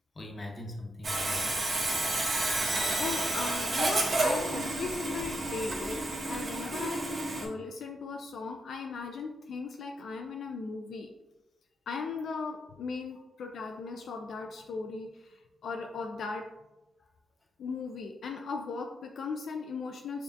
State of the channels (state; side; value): normal; both; correlation 0.81